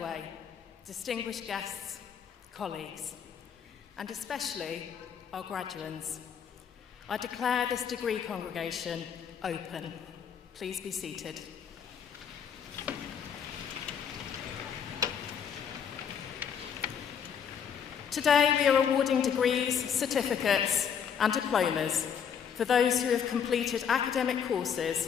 distinguished guests, colleagues, and especially our graduands, I declare this degree congregation open. Please be seated. Today we are awarding degrees, certificates and diplomas for those who have completed academic courses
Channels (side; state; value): right; quieter; 7.6 dB